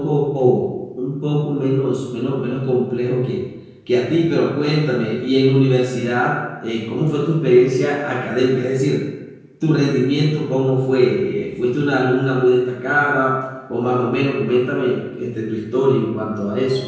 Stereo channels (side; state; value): both; identical; correlation 1.00